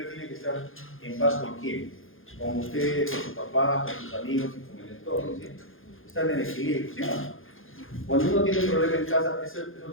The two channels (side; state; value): right; late; 0.59 ms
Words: tiene que estar en paz con quién, con usted, con su papá, con sus amigos y con el entorno, ¿sí? Están en equilibrio, ¿sí? Cuando uno tiene un problema en casa, eso